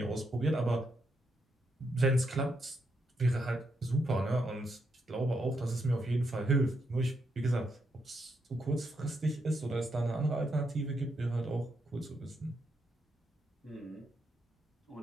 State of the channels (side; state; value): both; normal; correlation 0.80